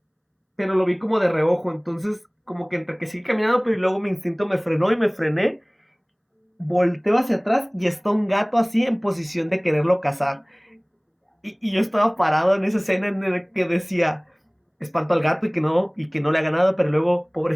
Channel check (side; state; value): both; identical; correlation 1.00